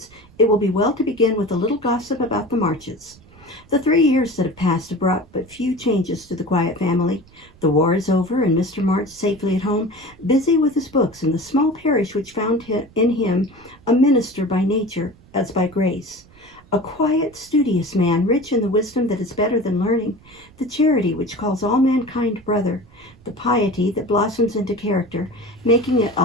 it will be well to begin with a little gossip about the Marches. The 3 years that have passed have brought but few changes to the quiet family. The war is over, and Mr. March safely at home, busy with his books in the small parish which found in him a minister by nature as by grace. A quiet, studious man, rich in the wisdom that is better than learning, the charity which calls all mankind brother, the piety that blossoms into character, making it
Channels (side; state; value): right; noise; rumble, 26 dB below the sound